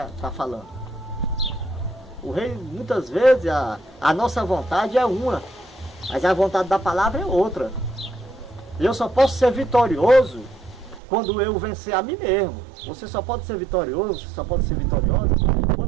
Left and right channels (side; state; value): left; drops out; at 11.0 s